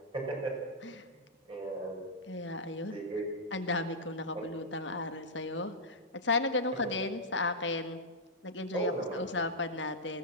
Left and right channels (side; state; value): both; normal; correlation -0.08